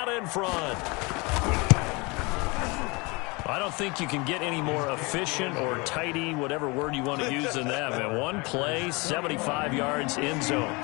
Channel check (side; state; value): right; quieter; 27.0 dB